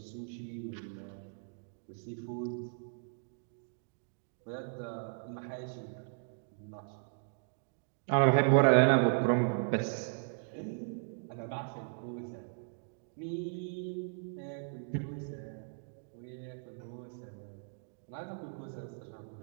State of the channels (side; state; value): left; silent; digital silence